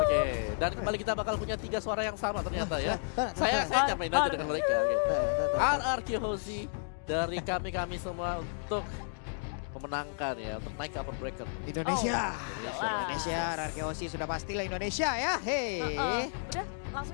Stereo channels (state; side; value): silent; right; digital silence